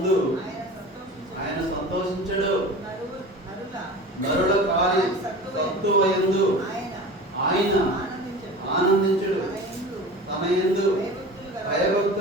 ఆయన సంతోషించడు, నరుల కార్య సత్తువయందు ఆయన ఆనందించడు. తన యందు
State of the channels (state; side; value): normal; both; correlation 0.35